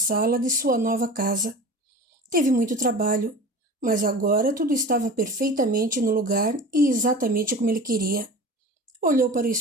de sua nova casa. Teve muito trabalho, mas agora tudo estava perfeitamente no lugar e exatamente como ele queria. Olhou para o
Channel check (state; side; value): normal; both; correlation 0.36